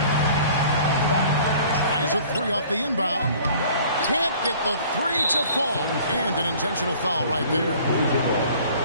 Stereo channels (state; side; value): inverted; both; correlation -0.51